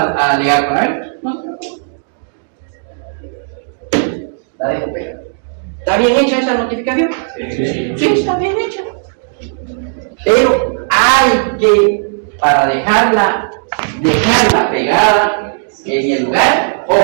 alegar con él, no se preocupe. La dejo pegada. ¿Está bien hecha esa notificación? Sí, está bien hecha. Pero hay que, para dejarla pegada en el lugar,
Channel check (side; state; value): left; silent; digital silence